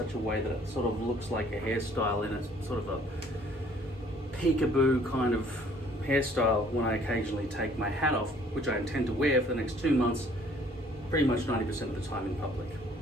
a way that it sort of looks like a hairstyle in a sort of a peekaboo kind of hairstyle when I occasionally take my hat off, which I intend to wear for the next 2 months, pretty much 90% of the time in public,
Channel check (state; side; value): normal; both; correlation 0.58